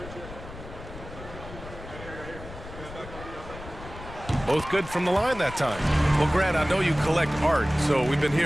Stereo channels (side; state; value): left; noise; rumble, 13 dB below the sound